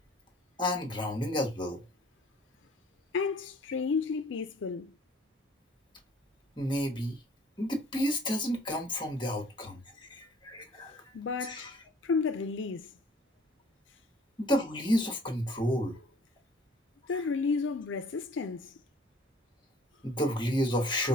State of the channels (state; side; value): normal; both; correlation 0.53